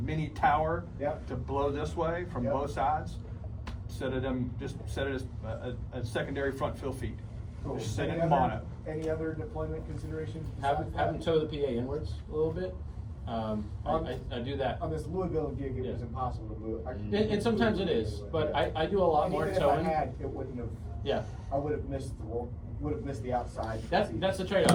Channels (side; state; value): both; identical; correlation 1.00